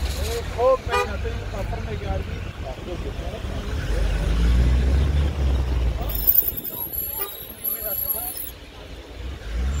خوب میکنه تو این کافر میگردی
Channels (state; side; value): identical; both; correlation 1.00